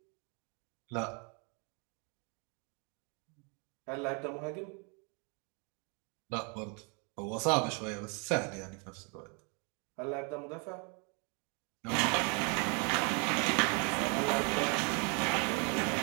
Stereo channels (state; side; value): quieter; left; 35.2 dB